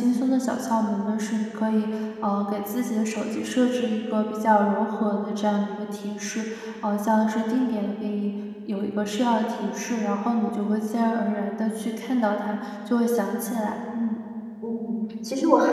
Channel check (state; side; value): identical; both; correlation 1.00